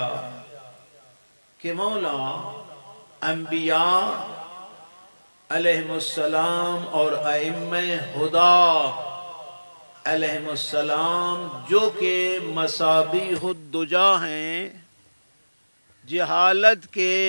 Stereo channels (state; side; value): inverted; both; correlation -1.00